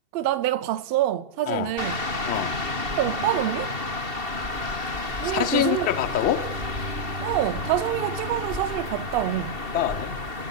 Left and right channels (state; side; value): late; left; 2.7 ms